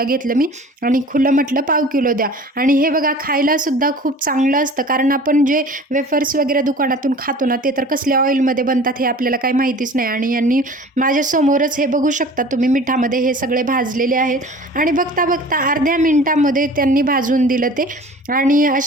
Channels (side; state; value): both; normal; correlation 0.43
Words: घेतलं मी आणि खुलं म्हटलं पाव किलो द्या. आणि हे बघा खायला सुद्धा खूप चांगलं असतं, कारण आपण जे वेफर्स वगैरे दुकानातून खातो ना, ते तर कसल्या ऑइलमध्ये बनतात हे आपल्याला काही माहितीच नाही. आणि यांनी माझ्यासमोरच हे बघू शकता तुम्ही मिठामध्ये हे सगळे भाजलेले आहेत. आणि बघता बघता अर्ध्या मिनिटामध्ये त्यांनी भाजून दिलं ते. आणि